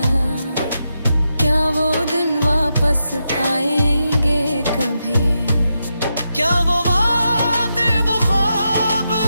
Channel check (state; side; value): inverted; both; correlation -0.86